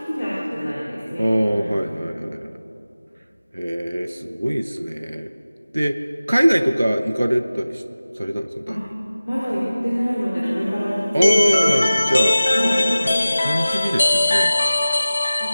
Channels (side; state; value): both; inverted; correlation -0.97